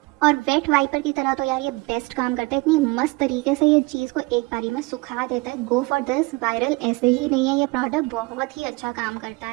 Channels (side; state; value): left; quieter; 24.9 dB